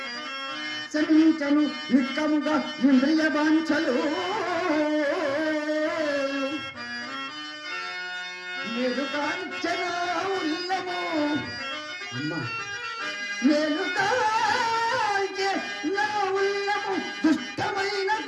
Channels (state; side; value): identical; both; correlation 1.00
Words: శమించను నిక్కముగా ఇంద్రియ వాంఛలు మెరుకాంచన ఉల్లము అమ్మా మెరుకాంచె నా ఉల్లము దుష్టమైన